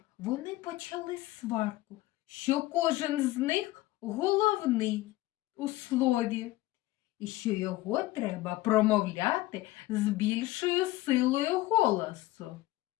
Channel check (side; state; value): right; quieter; 17.8 dB